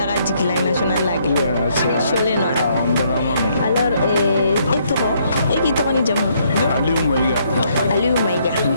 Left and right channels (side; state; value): both; inverted; correlation -0.70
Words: de la nationale lag. Alors, et toi? Et qui t'en est déjà? Aliou Maïga. Aliou Maïga.